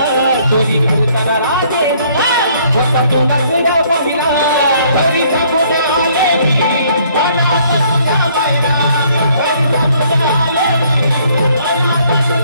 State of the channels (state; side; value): inverted; both; correlation -0.63